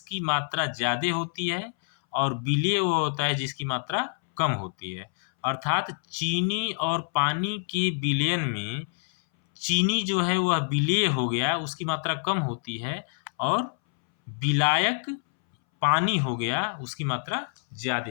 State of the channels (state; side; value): silent; right; 60 dB below the other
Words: मात्रा ज़्यादा होती है, और विलेय वह होता है जिसकी मात्रा कम होती है। अर्थात चीनी और पानी के विलयन में चीनी जो है वह विलेय हो गया, उसकी मात्रा कम होती है, और विलायक पानी हो गया उसकी मात्रा